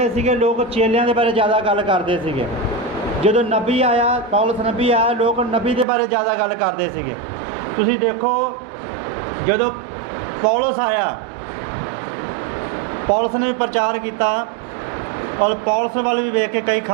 ਸੀਗੇ, ਲੋਕ ਚੇਲਿਆਂ ਦੇ ਬਾਰੇ ਜ਼ਿਆਦਾ ਗੱਲ ਕਰਦੇ ਸੀਗੇ। ਜਦੋਂ ਨਬੀ ਆਇਆ, ਪੌਲਸ ਨਬੀ ਆਇਆ, ਲੋਕ ਨਬੀ ਦੇ ਬਾਰੇ ਜ਼ਿਆਦਾ ਗੱਲ ਕਰਦੇ ਸੀਗੇ। ਤੁਸੀਂ ਦੇਖੋ, ਜਦੋਂ ਪੌਲਸ ਆਇਆ, ਪੌਲਸ ਨੇ ਵੀ ਪ੍ਰਚਾਰ ਕੀਤਾ, ਔਰ ਪੌਲਸ ਵੱਲ ਵੀ ਵੇਖ ਕੇ ਕਈ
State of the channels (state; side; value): drops out; left; at 5.9 s